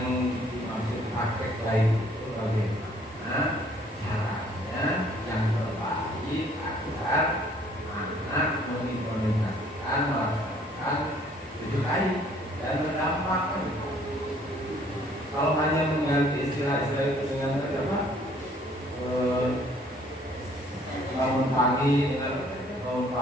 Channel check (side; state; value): both; normal; correlation 0.60